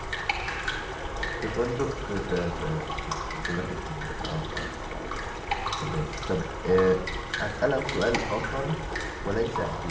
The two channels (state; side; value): identical; both; correlation 1.00